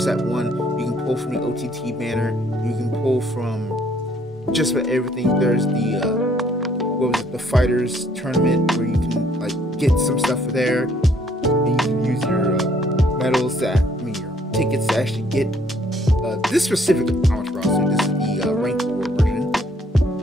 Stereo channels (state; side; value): normal; both; correlation 0.64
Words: 1. You can pull from the OTT banner. You can pull from just about everything. There's the the fighters tournament where you can like get some stuff there, and you can use your medals your tickets to actually get this specific Amaterasu. This is the rank 4 version,